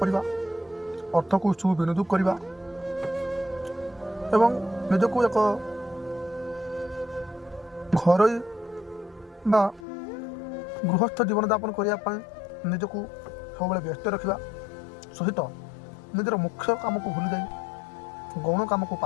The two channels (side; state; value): right; drops out; at 9.9 s